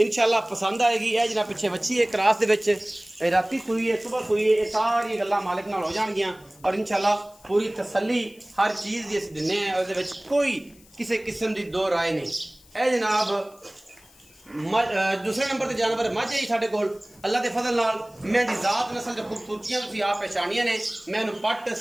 पसंद आएगी। यह जनाब पिछे बच्ची है क्रॉस दे विच, राती सुई है, सुबह सुई है, ये सारी गल्लां मालिक नाल हो जाणगियां और इंशाल्लाह पूरी तसल्ली हर चीज़ दी असीं दिन्ने आं। उहदे विच कोई किसी किस्म की 2 राय नहीं। यह जनाब दूसरे नंबर पर जानवर मझ है साढ़े कोल अल्लाह के फजल नाल। मैं दी जात नस्ल की खूबसूरतियां तुसीं आप पहचानियां ने। मैनू पट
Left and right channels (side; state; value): left; noise; hiss, 27 dB below the sound